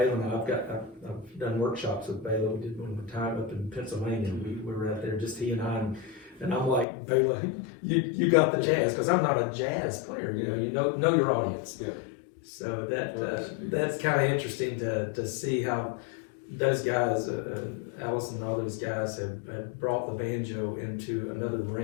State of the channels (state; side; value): drops out; right; at 6.9 s